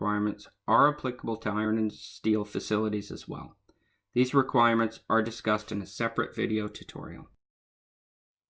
are applicable to iron and steel facilities as well. These requirements are discussed in a separate video tutorial.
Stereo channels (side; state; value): both; identical; correlation 1.00